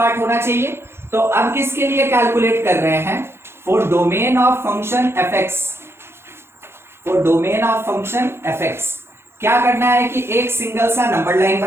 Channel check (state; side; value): late; left; 0.12 ms